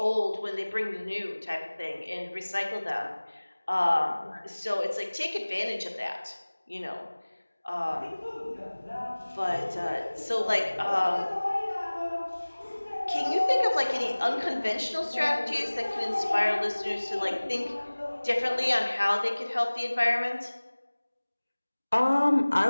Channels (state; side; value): inverted; both; correlation -1.00